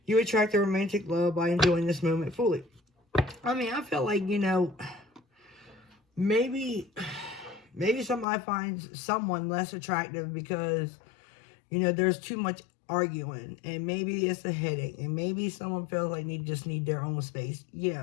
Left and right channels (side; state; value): right; drops out; at 8.2 s